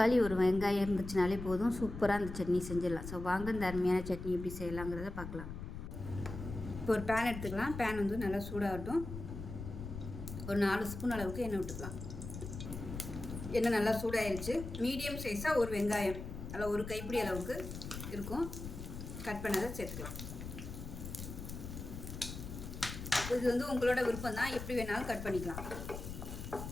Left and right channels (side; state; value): left; noise; rumble, 8 dB below the sound